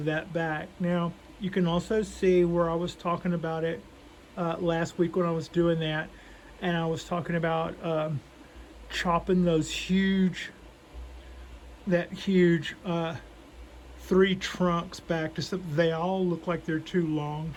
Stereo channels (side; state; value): both; identical; correlation 1.00